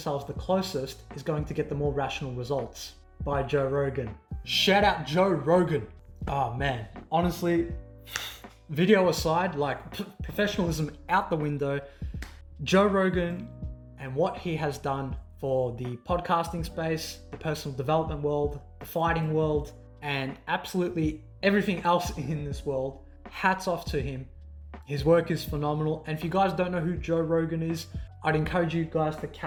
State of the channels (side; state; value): both; identical; correlation 1.00